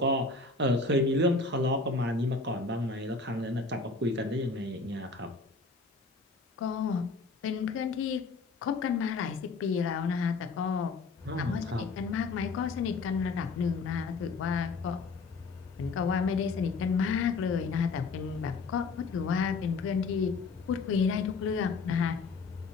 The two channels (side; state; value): right; quieter; 4.0 dB